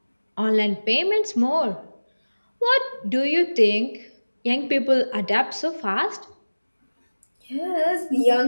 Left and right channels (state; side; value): inverted; both; correlation -1.00